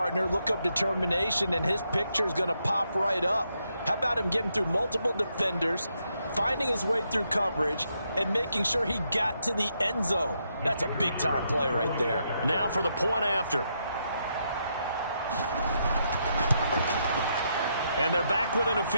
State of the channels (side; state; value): both; inverted; correlation -0.79